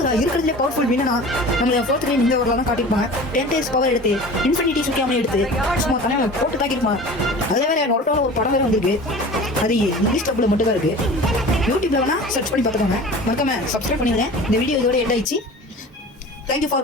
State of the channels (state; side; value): normal; both; correlation 0.39